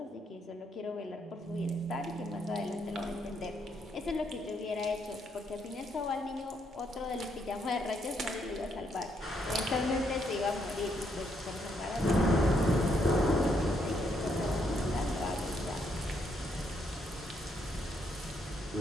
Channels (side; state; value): both; normal; correlation 0.75